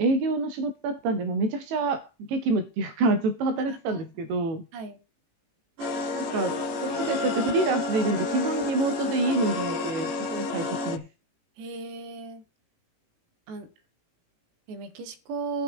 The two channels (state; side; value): late; left; 18 ms